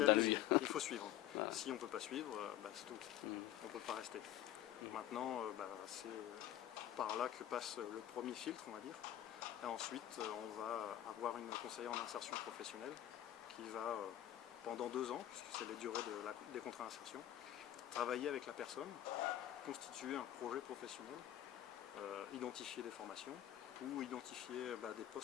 dans l'usine. Il faut suivre. Voilà. Si on ne peut pas suivre, c'est tout. On ne peut pas rester. Maintenant, c'est par là que passe le premier filtre, on va dire. Et ensuite, on va avoir une conseillère en insertion professionnelle qui va, pendant 2 ans, puisque c'est les durées des contrats d'insertion, travailler avec la personne, constituer un projet professionnel, identifier des formations ou identifier des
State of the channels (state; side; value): quieter; right; 12.4 dB